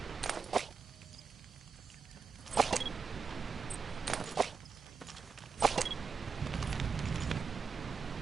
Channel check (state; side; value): quieter; left; 5.5 dB